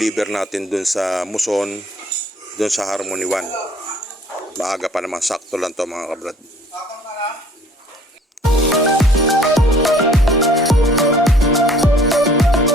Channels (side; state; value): both; normal; correlation 0.55